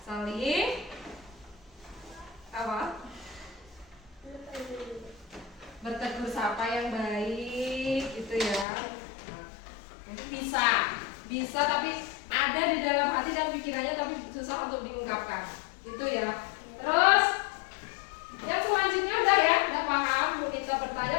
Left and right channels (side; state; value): right; drops out; at 8.7 s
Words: Saling apa? Bertegur sapa yang baik gitu ya. Nah, mungkin bisa tapi ada di dalam hati dan pikirannya tapi susah untuk diungkapkan. Itu ya. Terus yang selanjutnya udah paham. Bu Nita